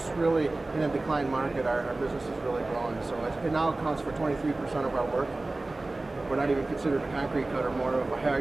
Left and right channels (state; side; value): quieter; left; 3.0 dB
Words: really in a decline market. Our business is really growing, so it now accounts for 23% of our work. We're not even considered a concrete cutter, more of a